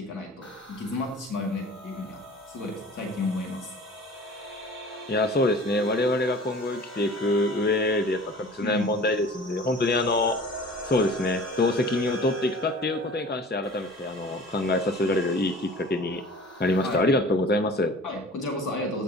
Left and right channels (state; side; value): normal; both; correlation 0.43